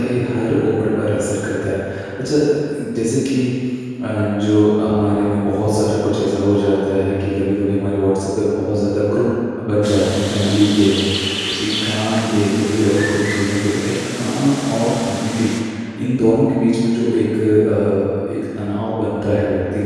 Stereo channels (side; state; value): both; identical; correlation 1.00